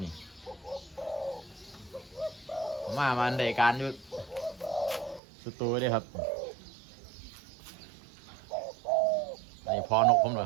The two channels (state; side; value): drops out; left; at 5.2 s